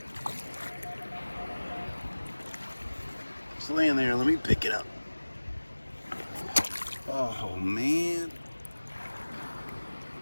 Just laying there. Let me pick it up. Oh, man.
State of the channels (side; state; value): both; inverted; correlation -1.00